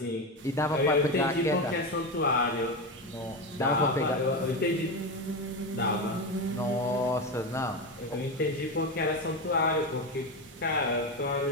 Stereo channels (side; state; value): both; normal; correlation 0.17